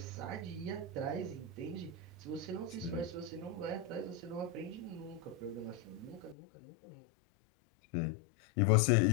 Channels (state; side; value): drops out; right; at 6.4 s